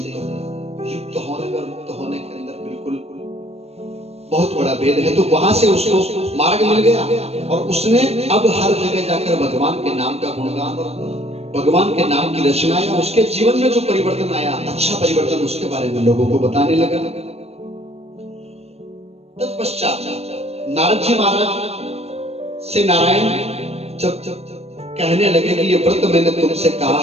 होने और मुक्त होने के अंदर बिल्कुल बहुत बड़ा भेद है। तो वहां से उसको मार्ग मिल गया और उसने अब हर जगह जाकर भगवान के नाम का गुणगान और भगवान के नाम की रचना आया। उसके जीवन में जो परिवर्तन आया, अच्छा परिवर्तन, उसके बारे में लोगों को बताने लगा। तत्पश्चात नारद जी महाराज से नारायण जब कहने लगे कि ये व्रत मैंने तुमसे कहा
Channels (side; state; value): left; late; 0.30 ms